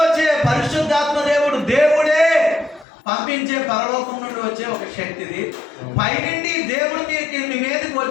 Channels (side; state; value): right; drops out; at 2.9 s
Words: వచ్చే పరిశుద్ధాత్మ దేవుడే పంపించే పరలోకం నుండి వచ్చే ఒక శక్తి. ఇది పైనుండి దేవుడు మీ మీదకి